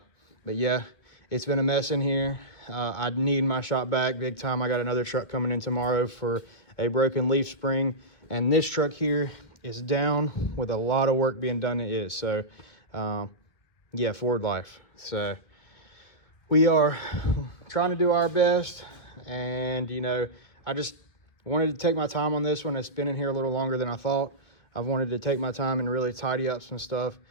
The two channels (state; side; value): late; right; 1.9 ms